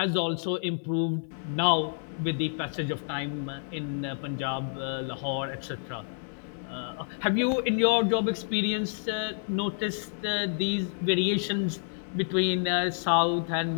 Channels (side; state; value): right; silent; 59 dB below the other